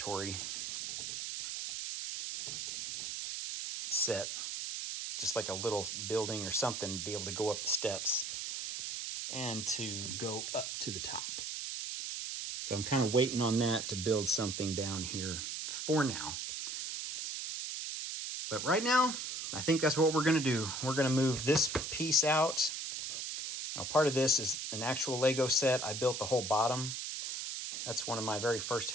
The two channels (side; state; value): right; noise; hiss, 5 dB below the sound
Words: set. Just like a little building or something to be able to go up the steps and to go up to the top. So I'm kind of waiting on that to build something down here for now. But right now, I think that's what we're going to do. We're going to move this piece out. Now, part of this is an actual Lego set. I built the whole bottom. That's one of my very first